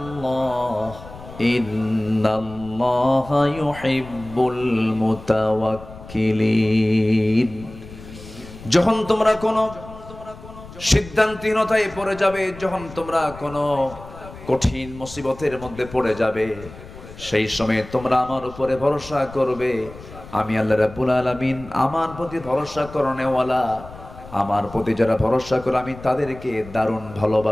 ইন্নাল্লাহা ইউহিব্বুল মুতাওয়াক্কিলিন। যখন তোমরা কোনো সিদ্ধান্তহীনতায় পড়ে যাবে, যখন তোমরা কোনো কঠিন মুসিবতের মধ্যে পড়ে যাবে, সেই সময় তোমরা আমার উপরে ভরসা করবে। আমি আল্লাহ রাব্বুল আলামিন আমার প্রতি ভরসা করনেওয়ালা, আমার প্রতি যারা ভরসা করে আমি তাদেরকে দারুণ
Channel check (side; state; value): left; noise; rumble, 16 dB below the sound